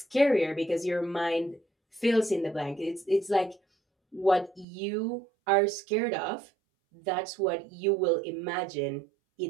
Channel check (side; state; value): left; drops out; at 4.7 s